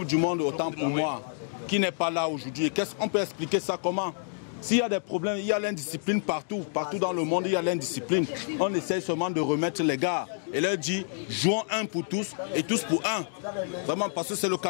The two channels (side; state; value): right; silent; digital silence